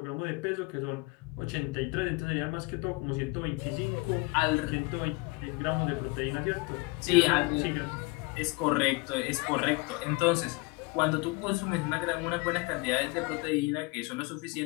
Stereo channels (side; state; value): right; quieter; 25.4 dB